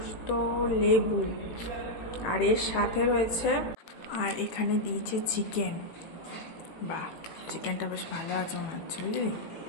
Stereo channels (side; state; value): right; late; 18 ms